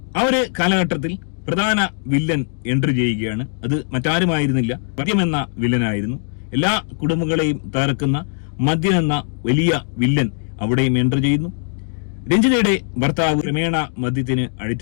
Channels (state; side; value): silent; right; 66 dB below the other